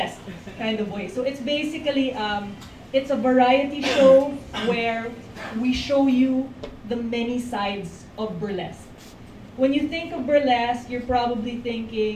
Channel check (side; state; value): both; identical; correlation 1.00